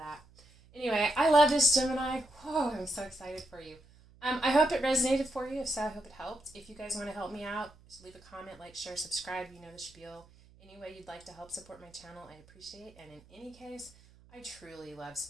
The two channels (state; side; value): noise; right; hum, 26 dB below the sound